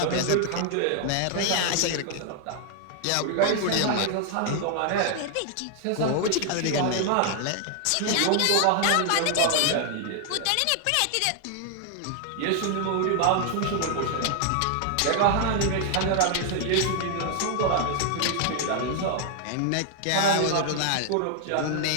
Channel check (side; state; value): both; different; correlation 0.00